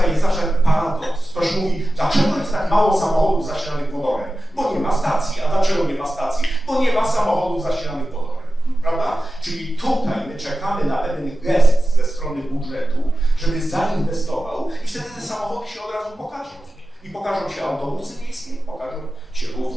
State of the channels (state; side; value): normal; both; correlation 0.94